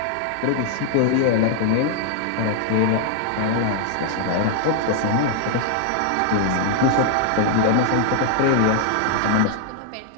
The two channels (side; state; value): both; different; correlation -0.01